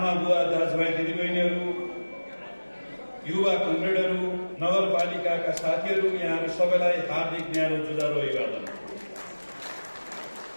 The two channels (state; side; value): inverted; both; correlation -1.00